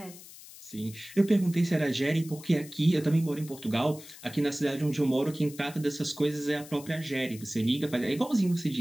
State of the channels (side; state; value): left; noise; hiss, 17 dB below the sound